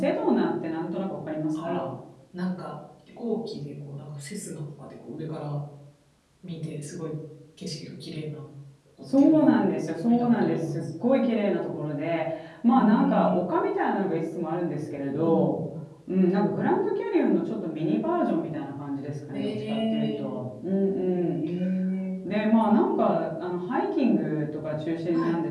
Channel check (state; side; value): identical; both; correlation 1.00